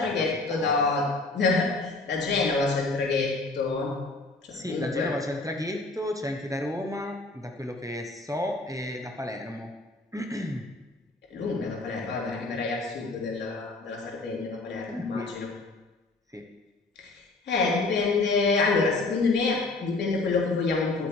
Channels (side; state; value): right; quieter; 3.3 dB